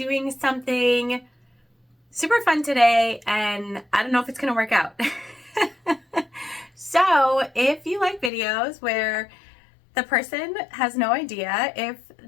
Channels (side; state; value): right; drops out; at 8.3 s